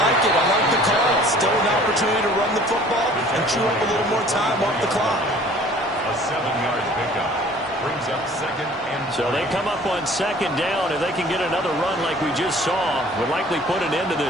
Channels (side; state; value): both; normal; correlation 0.51